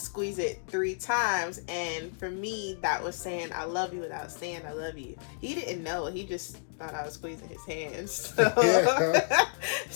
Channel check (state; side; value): silent; right; digital silence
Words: it 3 times, and for me that was saying I love you without saying I love you. He didn't know, he just thought I was squeezing his hand.